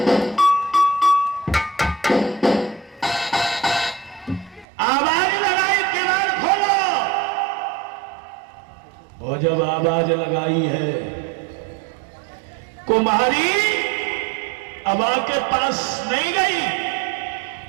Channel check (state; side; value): drops out; left; at 4.7 s